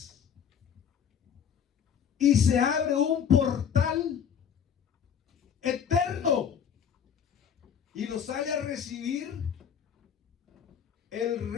Y se abre un portal eterno. Y lo sale a recibir el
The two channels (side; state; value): right; quieter; 7.9 dB